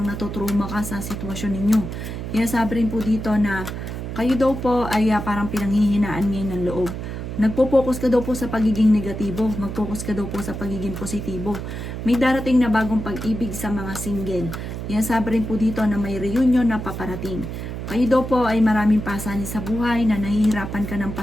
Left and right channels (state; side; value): noise; right; hum, 6 dB below the sound